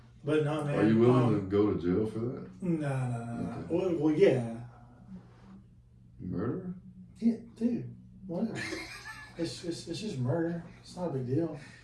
But no, man. Are you willing to go to jail for that? No. Okay. Well, yeah. Murder? Yeah, dude. Whatever. It's just murder. It's not a big deal.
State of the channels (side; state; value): both; identical; correlation 1.00